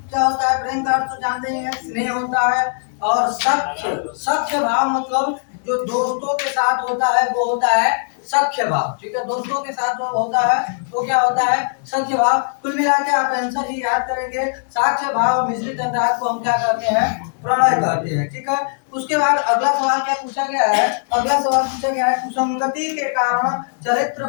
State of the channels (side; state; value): right; silent; 65 dB below the other